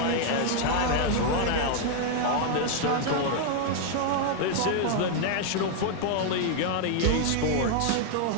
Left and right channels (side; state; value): both; different; correlation 0.00